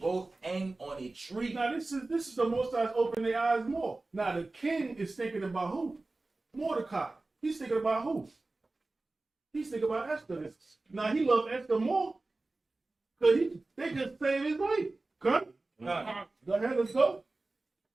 hanged on a tree. Now this is the Most High's open their eyes more. Now the king is thinking about who? Mordecai. He's thinking about who? He's thinking about Esther. Now he loved Esther more because they just saved his life. Come. Go ahead, let's go.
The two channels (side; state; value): left; quieter; 3.2 dB